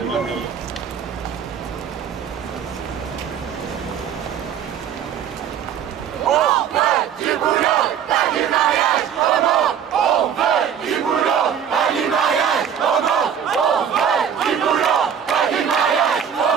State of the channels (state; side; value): quieter; left; 8.3 dB